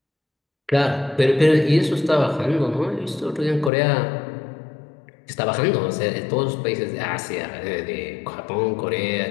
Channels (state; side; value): drops out; right; at 3.7 s